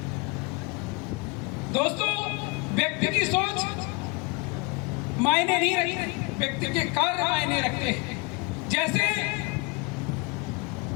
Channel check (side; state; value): right; quieter; 28.9 dB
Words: दोस्तों, व्यक्ति की सोच मायने नहीं रखती, व्यक्ति के कार्य मायने रखते हैं। जैसे